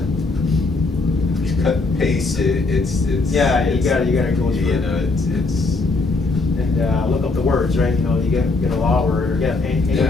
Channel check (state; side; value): quieter; right; 3.5 dB